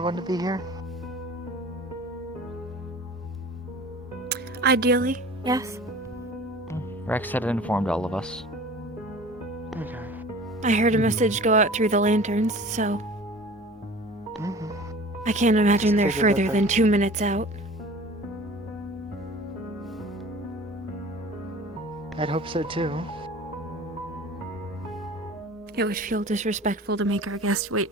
to be here? Ideally, yes. Rex had informed all of us. I heard a message go out through the lanterns, so I can't imagine they're Figured that further than 2 minutes out. I'd hope so too. It would feel disrespectful to make our guest wait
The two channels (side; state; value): both; normal; correlation 0.42